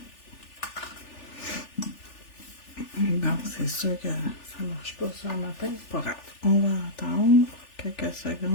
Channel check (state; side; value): late; right; 3.4 ms